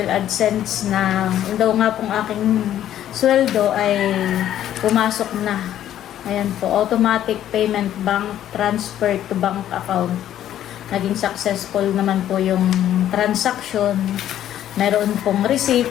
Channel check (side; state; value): right; quieter; 11.5 dB